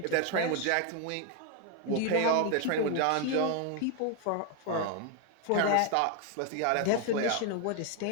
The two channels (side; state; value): both; different; correlation 0.01